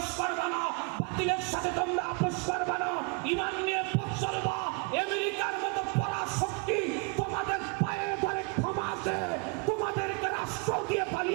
করবে না, বাতিলের সাথে তোমরা আপোষ করবে না, ঈমান নিয়ে পথ চলবা। আমেরিকার মতো পরাশক্তি তোমাদের পায়ে ধরে ক্ষমা আছে, তোমাদেরকে রাষ্ট্র দিয়ে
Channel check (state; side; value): quieter; left; 33.3 dB